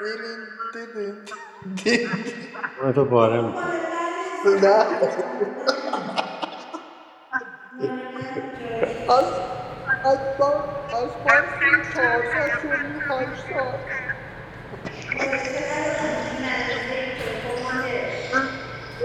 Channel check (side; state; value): both; identical; correlation 1.00